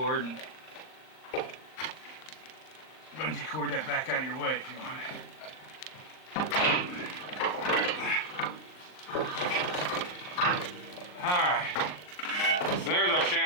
and bungee cord that back out of your way if you want it. Alright, so there's our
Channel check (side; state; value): right; late; 39 ms